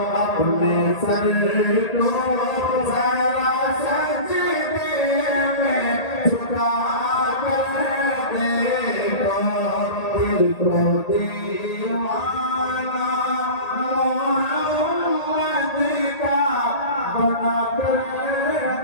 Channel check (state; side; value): late; right; 1.8 ms